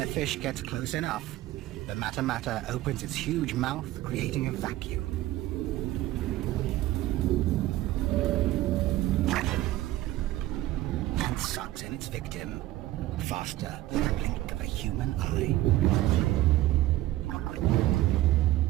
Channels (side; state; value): left; quieter; 15.8 dB